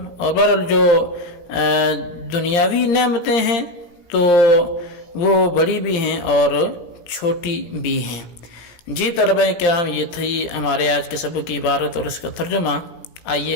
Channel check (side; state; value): right; late; 17 ms